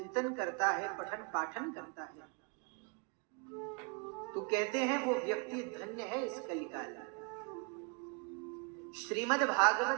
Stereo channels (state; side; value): quieter; left; 33.5 dB